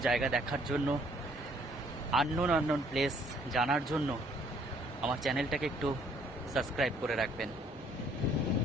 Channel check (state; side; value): normal; both; correlation 0.62